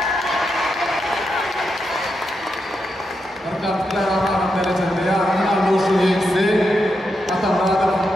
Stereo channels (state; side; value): normal; both; correlation 0.85